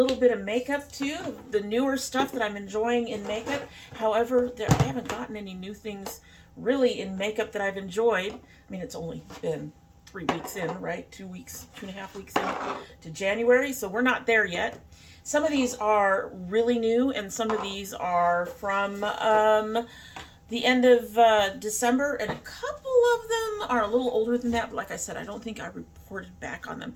bit of makeup too, the newer stuff that I'm enjoying in makeup. However, I haven't gotten any new things really in makeup that I've enjoyed. I mean, it's only been 3 weeks in, right? 2 weeks, 2.5 weeks in to January, so we're not there yet. Some of these are really new, and some of these are from the end of December, and a couple of them are a little older than that, but like I said, I don't think I reported back on them.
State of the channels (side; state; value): both; identical; correlation 1.00